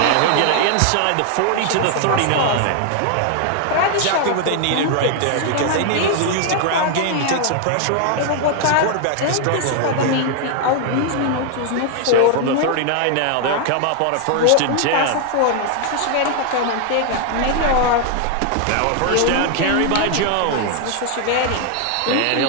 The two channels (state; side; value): different; both; correlation 0.00